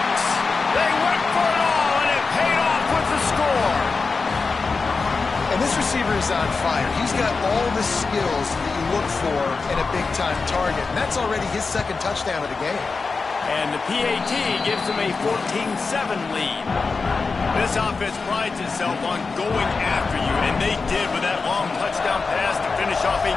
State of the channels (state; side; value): quieter; right; 4.4 dB